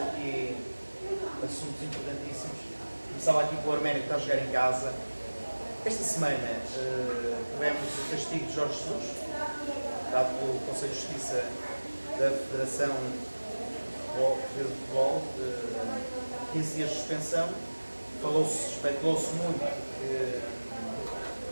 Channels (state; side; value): inverted; both; correlation -1.00